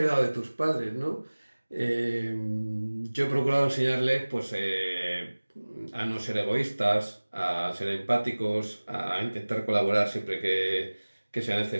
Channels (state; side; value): inverted; both; correlation -1.00